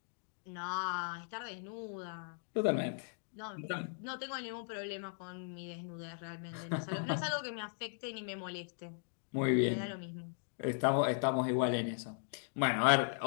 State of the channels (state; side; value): silent; right; digital silence